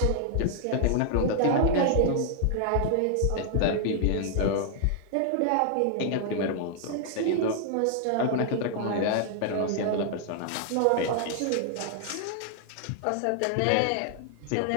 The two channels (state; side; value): different; both; correlation 0.00